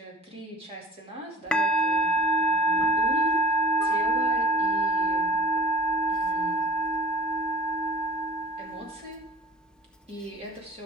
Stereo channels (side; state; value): both; normal; correlation 0.45